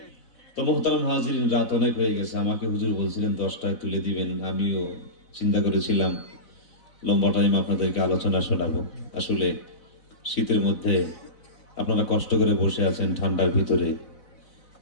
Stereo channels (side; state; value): right; late; 4.0 ms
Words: তো মোহতারাম হাজিরিন, রাত অনেক হয়ে গেছে। আমাকে হুজুর বলছিলেন 10টায় তুলে দিবেন, আমিও চিন্তা করেছিলাম লম্বা টাইম আপনাদেরকে আলোচনা শোনাবো। আসলে শীতের মধ্যে আপনারা কষ্ট করে বসে আছেন ঠান্ডার ভিতরে,